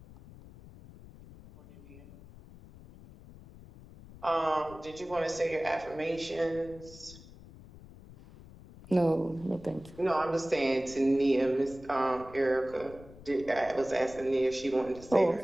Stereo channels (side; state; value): left; noise; rumble, 19 dB below the sound